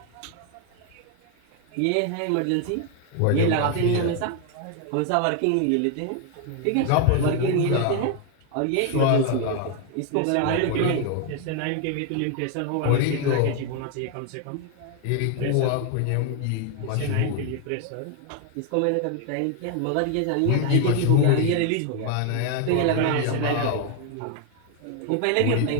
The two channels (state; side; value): different; both; correlation 0.01